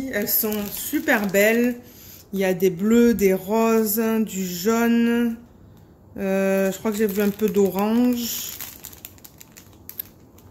Elles sont super belles. Il y a des bleus, des roses, du jaune. Je crois que j'ai vu un peu d'orange.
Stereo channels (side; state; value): both; identical; correlation 1.00